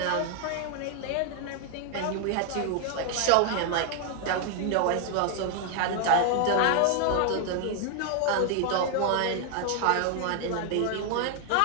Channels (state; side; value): different; both; correlation 0.00